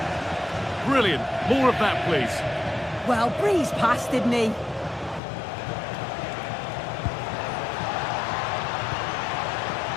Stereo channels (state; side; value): drops out; right; at 5.2 s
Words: Brilliant. More of that, please. Well, breezed past, didn't he?